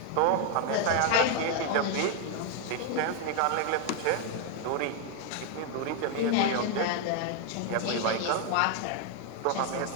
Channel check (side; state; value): both; different; correlation 0.01